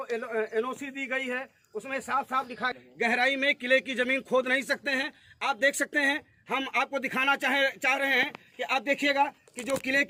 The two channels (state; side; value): identical; both; correlation 1.00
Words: एनओसी दी गई है उसमें साफ साफ लिखा है गहराई में किले की जमीन खोद नहीं सकते हैं। आप देख सकते हैं, हम आपको दिखाना चाह रहे हैं कि आप देखिएगा कि जो किले